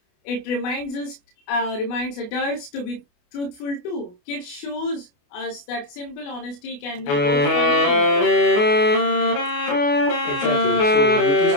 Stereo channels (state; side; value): late; right; 28 ms